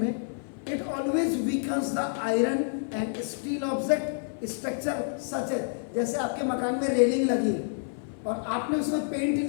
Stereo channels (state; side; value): silent; right; 55 dB below the other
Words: it always weakens the iron and steel object structure such है, जैसे आपके मकान में रेलिंग लगी, और आपने उसमें पेंट